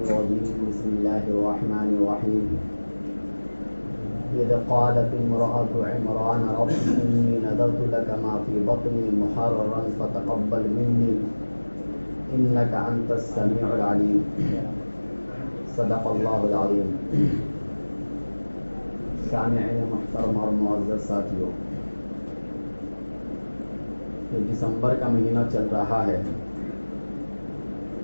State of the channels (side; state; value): both; inverted; correlation -1.00